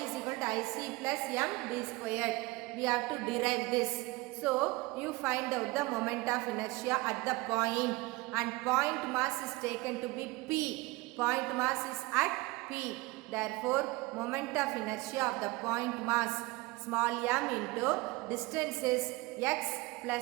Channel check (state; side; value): quieter; left; 22.4 dB